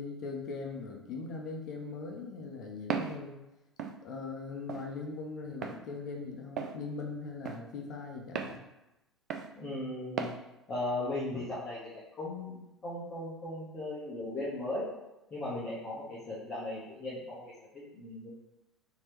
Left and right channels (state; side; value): normal; both; correlation 0.34